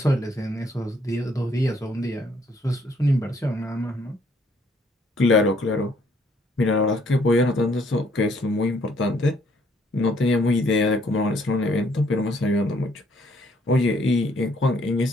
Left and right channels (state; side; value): normal; both; correlation 0.66